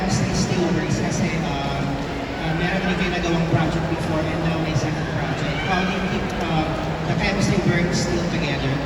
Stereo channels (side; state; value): both; identical; correlation 1.00